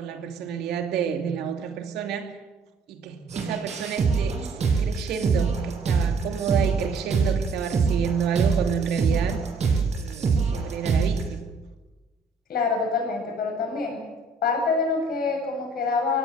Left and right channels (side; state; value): left; quieter; 3.3 dB